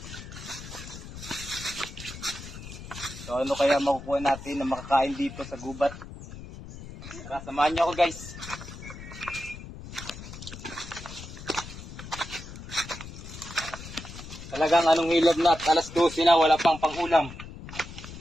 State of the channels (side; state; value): left; noise; rumble, 13 dB below the sound